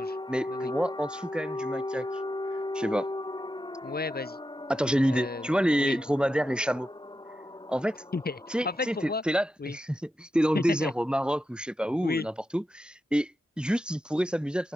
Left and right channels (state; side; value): normal; both; correlation 0.88